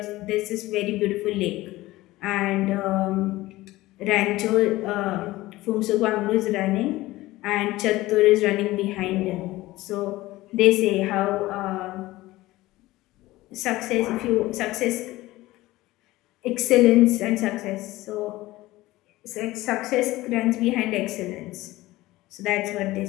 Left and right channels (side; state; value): right; quieter; 18.0 dB